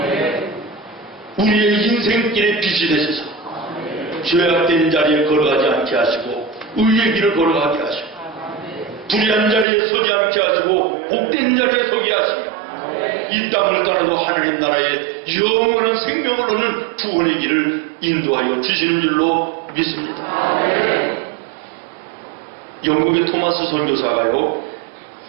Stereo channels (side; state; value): left; drops out; at 9.7 s